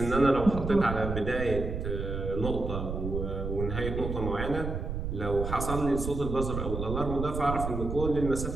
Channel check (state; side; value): noise; right; rumble, 4 dB below the sound